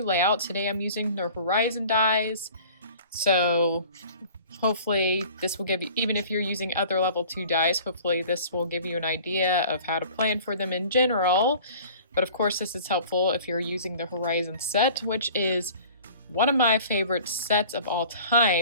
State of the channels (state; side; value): inverted; both; correlation -0.46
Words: layout. Today I'm using the Horizon dies, so hopefully this will give you, even if you're using other level 2 dies, hopefully this will give you an idea of how to plan for them in general. But of course this is helpful if you're using the Horizon set, which is one of my favorite sets of all